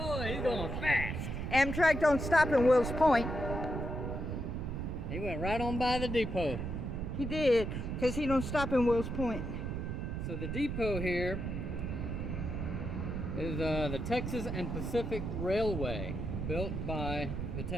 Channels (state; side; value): noise; right; rumble, 3 dB below the sound